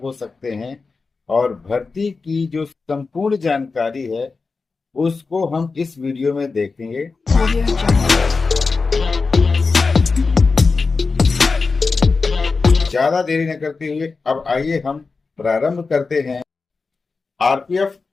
हो सकते हैं और भर्ती की जो संपूर्ण जानकारी है उसको हम इस वीडियो में देखेंगे। ज्यादा देरी न करते हुए अब आइए हम प्रारंभ करते हैं। आरपीएफ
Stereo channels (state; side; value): quieter; right; 4.3 dB